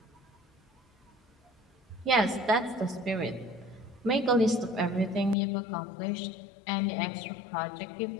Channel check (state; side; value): drops out; right; at 5.4 s